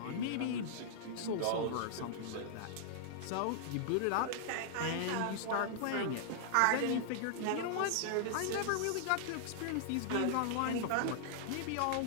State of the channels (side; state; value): both; different; correlation -0.01